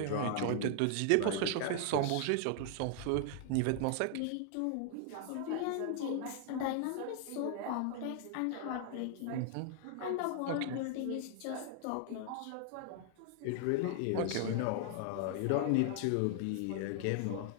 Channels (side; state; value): both; different; correlation 0.00